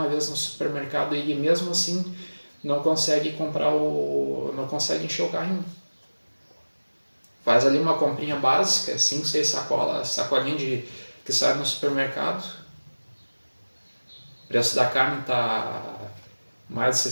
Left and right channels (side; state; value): both; inverted; correlation -1.00